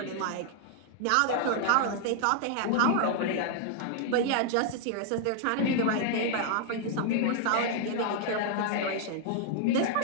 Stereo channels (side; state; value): both; different; correlation -0.01